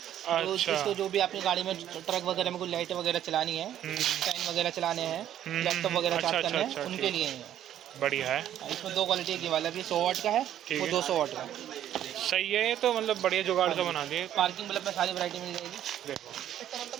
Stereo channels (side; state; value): left; quieter; 11.2 dB